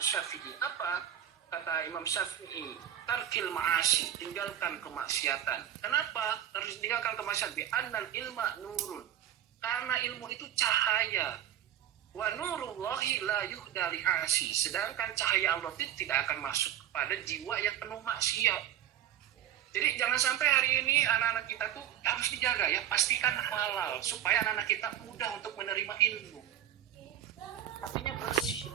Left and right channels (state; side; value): quieter; left; 10.9 dB